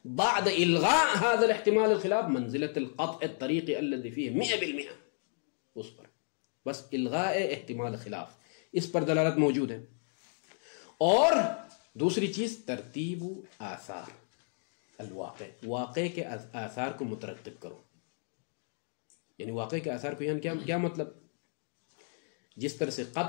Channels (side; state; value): right; silent; 56 dB below the other